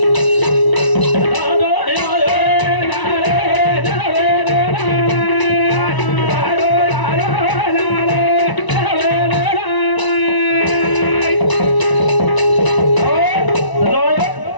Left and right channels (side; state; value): right; late; 1.0 ms